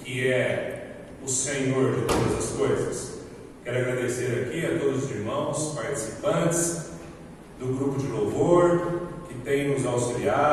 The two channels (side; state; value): both; identical; correlation 1.00